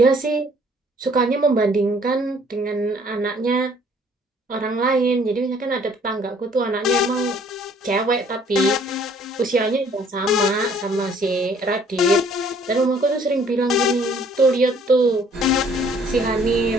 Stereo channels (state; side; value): normal; both; correlation 0.59